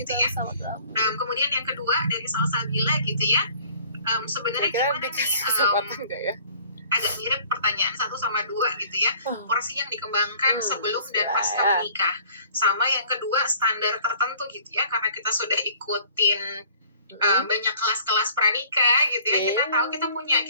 ya. Kemudian yang kedua dari Salsabila gitu ya, sebenarnya gimana nih? Agak mirip pertanyaan 1 sama 2 gitu ya. Porsi yang dikembangkan sebelum dan pasca menikah. Sama yang kedua standar tertentu gitu ya. Karena kita sudah ikutin banyak kelas-kelas pranikah gitu ya. Kita tahu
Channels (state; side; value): inverted; both; correlation -0.53